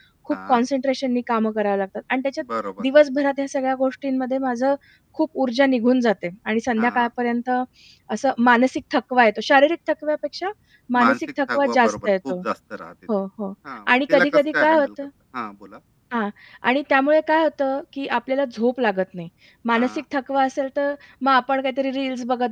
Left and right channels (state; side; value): identical; both; correlation 1.00